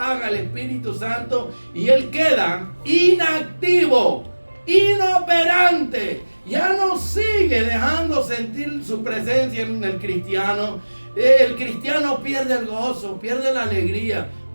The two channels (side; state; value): both; inverted; correlation -1.00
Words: el Espíritu Santo y él queda inactivo, inoperante. Ya no sigue dejando sentir su presencia en el cristiano. El cristiano pierde el gozo, pierde la alegría.